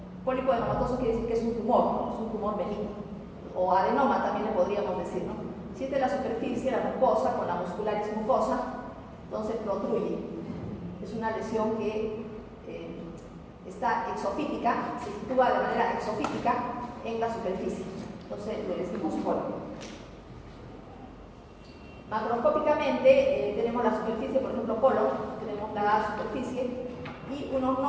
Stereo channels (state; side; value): identical; both; correlation 1.00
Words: Pólipo adenomatoso quiere decir que es un tumor benigno. O adenoma también le podríamos decir, ¿no? Si es de la superficie, la mucosa, con la muscularis mucosa, entonces protruye. Es una lesión que está exofítica, se sitúa de manera exofítica en la superficie. Entonces le decimos pólipo. Macroscópicamente tenemos la superficie, por ejemplo, colon, tenemos la superficie y unos